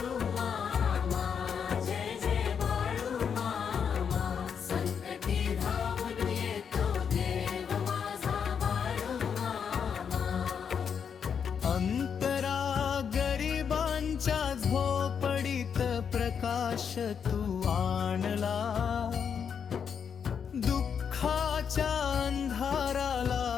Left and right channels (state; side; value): quieter; right; 7.1 dB